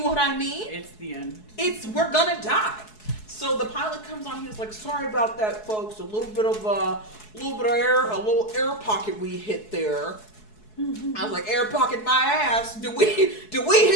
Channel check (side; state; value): right; late; 4.7 ms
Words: I mean? It's the end. We're gonna die. So the pilot comes on. He was like, "Sorry about that, folks. A little bit of air, a little air pocket we hit there." I was like, "Air pocket my ass. Do we